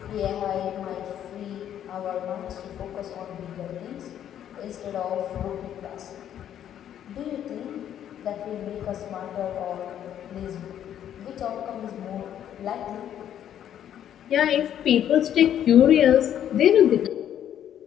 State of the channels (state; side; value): quieter; right; 10.3 dB